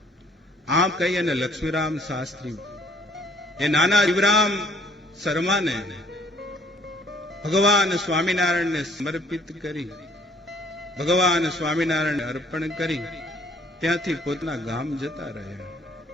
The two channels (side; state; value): both; normal; correlation 0.59